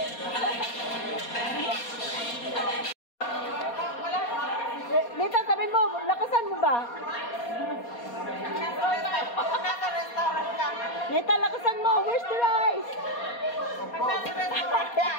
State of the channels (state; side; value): late; right; 4.2 ms